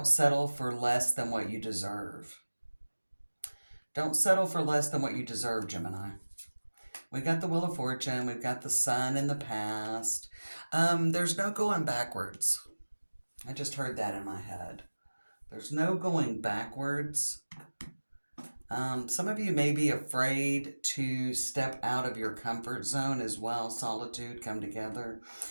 settle for less than what you deserve. Don't settle for less than what you deserve, Gemini. We got the Wheel of Fortune. We've got the Sun in the past. There's no going backwards. I just heard that in my head. There's no going backwards. Some of you may be afraid to step out of your comfort zone as well. Solitude, come together.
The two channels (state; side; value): inverted; both; correlation -1.00